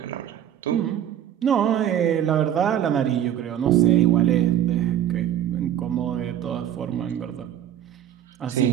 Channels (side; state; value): left; quieter; 10.6 dB